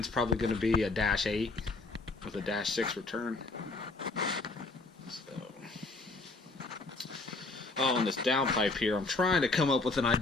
probably going to be a -8 with a -6 return. So, on this downpipe here, I'm trying to come up with an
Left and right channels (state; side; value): quieter; right; 3.4 dB